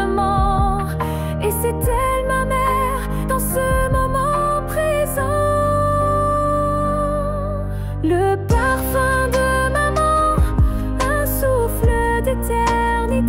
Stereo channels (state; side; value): identical; both; correlation 1.00